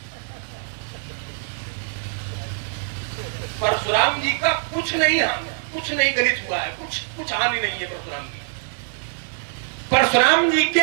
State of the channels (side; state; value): left; silent; digital silence